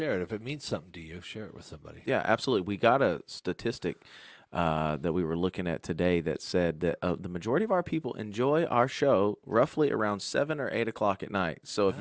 it. If it means something to you, share it with somebody. Yeah, absolutely. We got a statistic that we were looking at today that said that the majority of our people enjoy our show roughly around 7 or 8 o'clock at night. So if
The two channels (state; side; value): identical; both; correlation 1.00